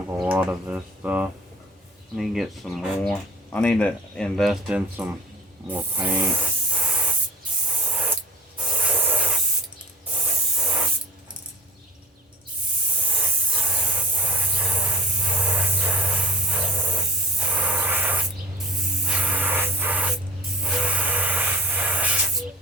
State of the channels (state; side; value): normal; both; correlation 0.43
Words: a lot of this stuff. I need to get some more. I need to invest in some more paint.